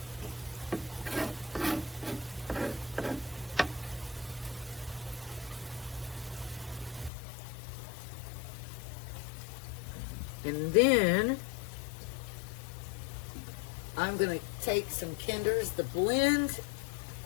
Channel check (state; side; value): drops out; right; at 7.1 s